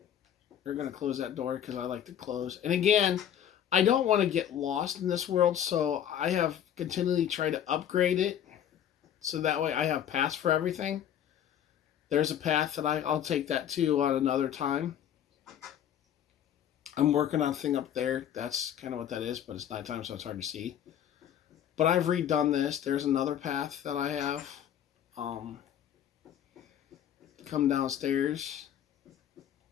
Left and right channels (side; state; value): right; quieter; 10.0 dB